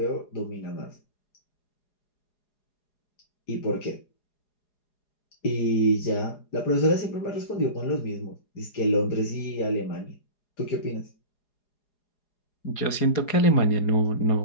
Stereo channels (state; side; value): late; right; 4.8 ms